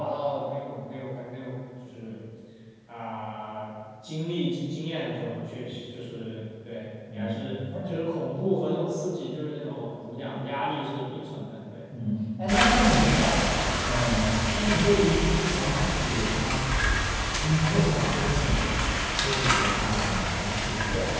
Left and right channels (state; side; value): identical; both; correlation 1.00